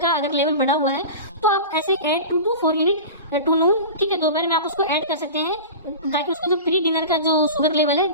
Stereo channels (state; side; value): inverted; both; correlation -0.32